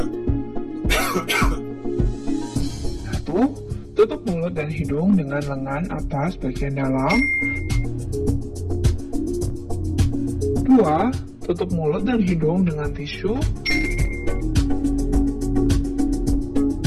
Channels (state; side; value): identical; both; correlation 1.00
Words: Satu, tutup mulut dan hidung dengan lengan atas bagian dalam. Dua, tutup mulut dan hidung dengan tisu.